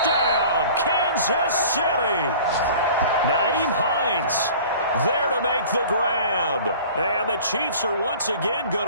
Kansas City. Nyheim Hines there to make the grab. And the Chiefs are once again going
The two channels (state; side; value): inverted; both; correlation -0.45